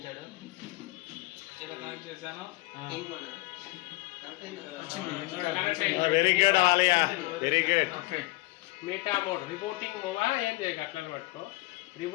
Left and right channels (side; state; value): right; quieter; 21.0 dB